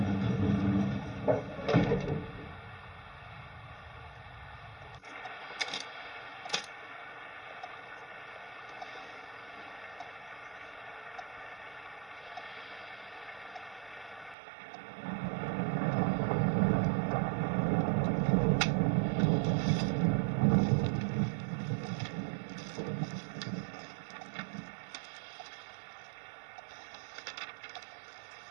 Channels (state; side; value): drops out; left; at 14.4 s